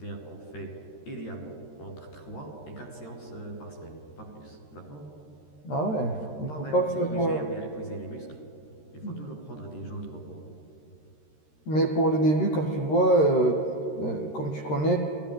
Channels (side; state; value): right; late; 13 ms